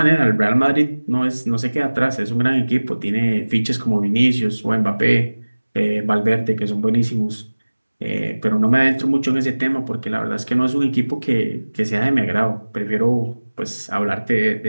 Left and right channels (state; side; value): inverted; both; correlation -1.00